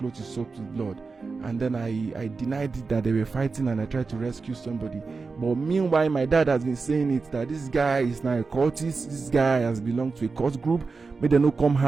is soaked with blood? And then I denied it, that they were fighting, and I tried to rescue somebody. But meanwhile, my dad has been saying it, that this guy is now a cultist, this guy has belonged to a cult group. May they no come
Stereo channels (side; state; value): left; quieter; 4.4 dB